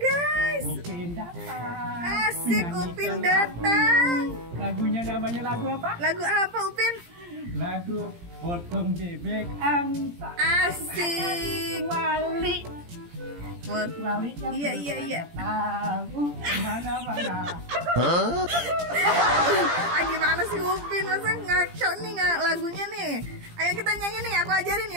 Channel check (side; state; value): left; late; 17 ms